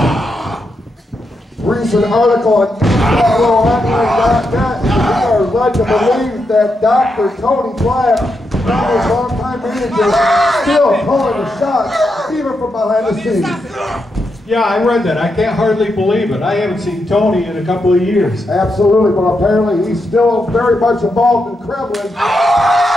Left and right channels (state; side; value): normal; both; correlation 0.84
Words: Recent article on MWOonline.net are led to believe that Dr. Tony Black, his longtime manager, still calling the shots, even from behind the scenes. Yeah, I read that. I can't hardly believe it. I haven't seen Tony in a couple of years. Absolutely, but apparently he's still very much involved in Kremlin.